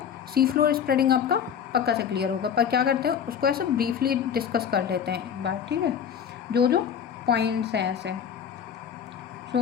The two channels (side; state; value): right; quieter; 8.1 dB